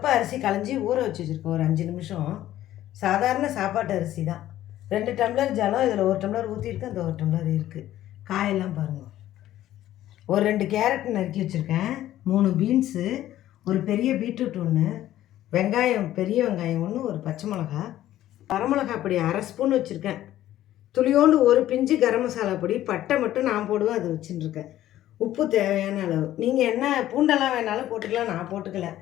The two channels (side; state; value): right; quieter; 13.4 dB